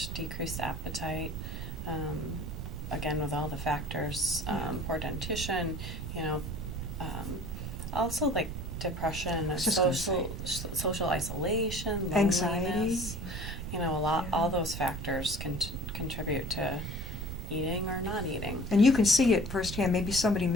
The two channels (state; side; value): noise; right; rumble, 6 dB below the sound